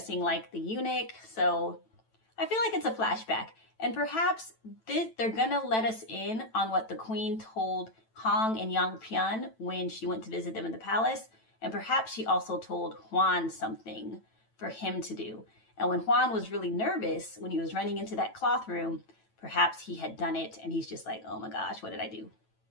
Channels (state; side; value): late; right; 9.0 ms